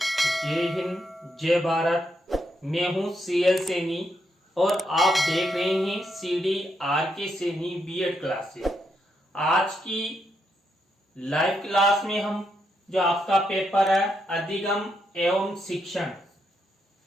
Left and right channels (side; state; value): both; normal; correlation 0.80